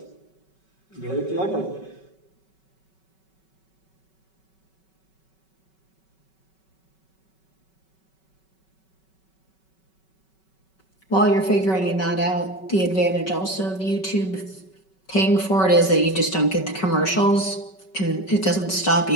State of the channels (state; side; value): late; right; 5.3 ms